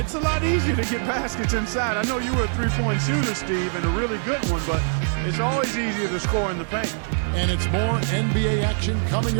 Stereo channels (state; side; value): silent; left; 63 dB below the other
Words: a lot easier to get baskets inside. I know you were a three-point shooter, Steve, and a really good one, but it's always easier to score in the paint. And it's more NBA action coming